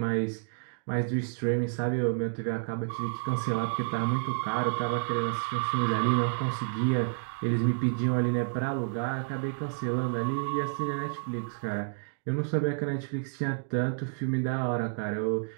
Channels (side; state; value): left; silent; digital silence